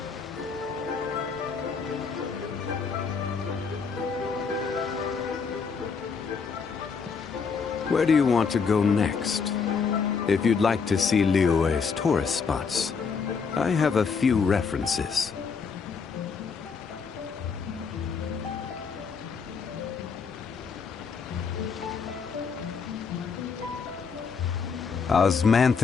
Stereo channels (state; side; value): quieter; right; 5.5 dB